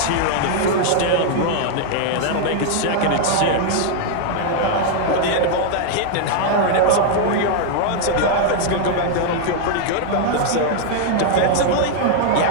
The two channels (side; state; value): both; different; correlation 0.00